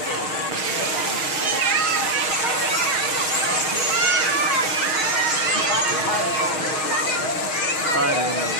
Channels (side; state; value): right; late; 6.4 ms